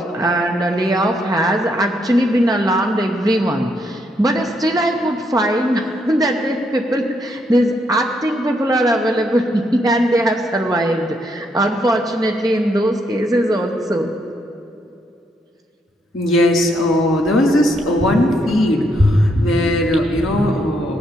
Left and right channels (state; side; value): normal; both; correlation 0.75